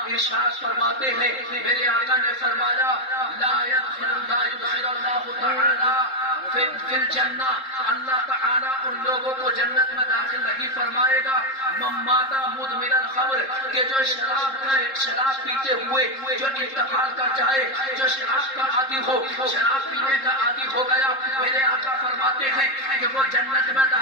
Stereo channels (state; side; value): late; right; 3.7 ms